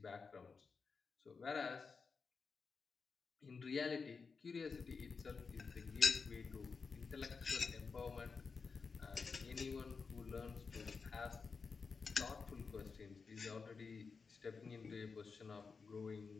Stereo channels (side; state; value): right; quieter; 5.0 dB